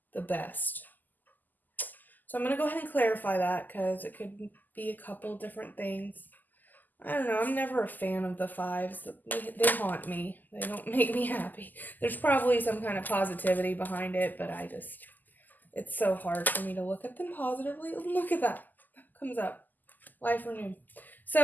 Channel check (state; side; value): late; right; 0.085 ms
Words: the best. So I'm going to go ahead and clarify that because it could be a couple different things. I don't know, I'm never a fan of the fives. They haunt me. They don't make me happy. There's probably some kind of positivity behind it, but it's so hard for me to look at them positively. Look at that. That comes up. Life renewed.